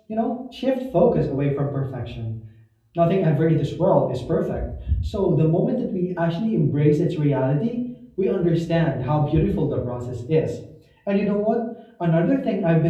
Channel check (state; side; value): identical; both; correlation 1.00